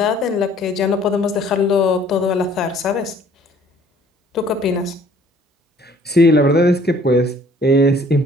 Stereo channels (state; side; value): normal; both; correlation 0.57